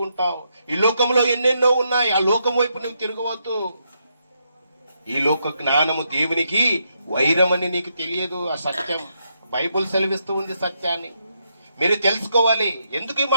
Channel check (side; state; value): both; inverted; correlation -0.79